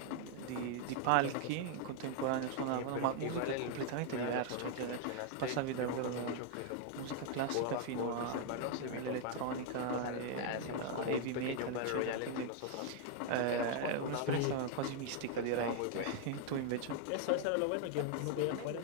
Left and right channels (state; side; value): different; both; correlation 0.00